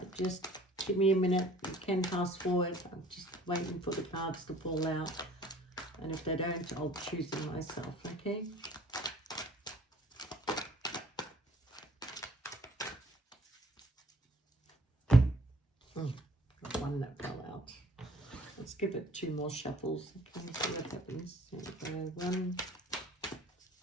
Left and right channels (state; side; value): normal; both; correlation 0.53